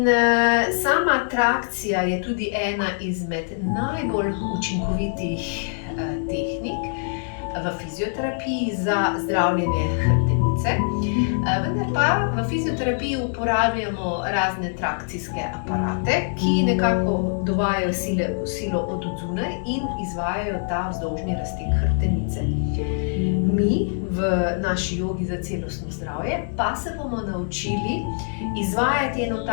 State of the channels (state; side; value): silent; right; digital silence